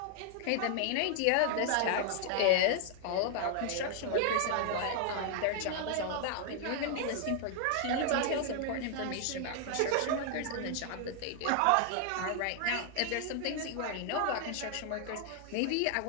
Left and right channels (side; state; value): both; different; correlation 0.00